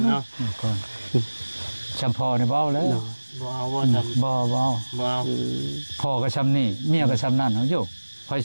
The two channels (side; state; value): both; inverted; correlation -1.00